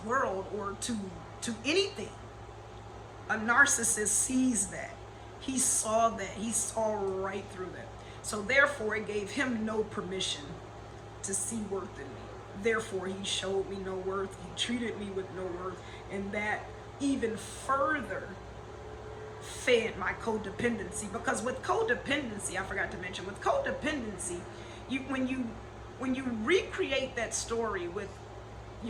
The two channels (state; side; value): identical; both; correlation 1.00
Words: world, or to anything, a narcissist sees that. He saw that. He saw right through that. So therefore, it gave him no permission to see worth in me. Therefore, he showed me no worth. He treated me with no worth. And that even further fed my codependency. Because with codependency, I forgot to mention, with codependency, when you recreate that story with